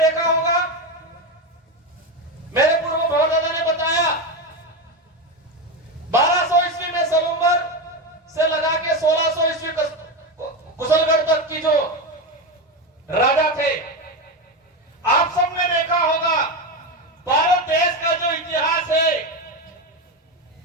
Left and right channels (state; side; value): normal; both; correlation 0.15